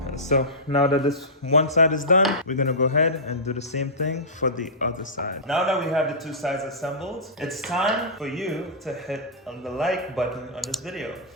So now that this one side is done, we're gonna go ahead and do the same thing for the other side. Now that we have the two sides assembled, it's time for you to hit on the like button on this video.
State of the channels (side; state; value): both; normal; correlation -0.18